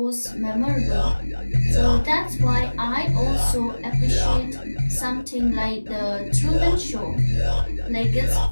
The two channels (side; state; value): both; inverted; correlation -1.00